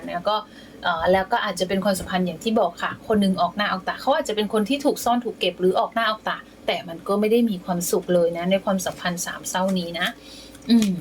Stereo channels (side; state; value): both; identical; correlation 1.00